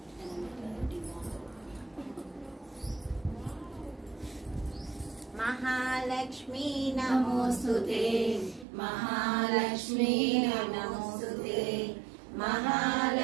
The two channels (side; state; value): left; drops out; at 8.7 s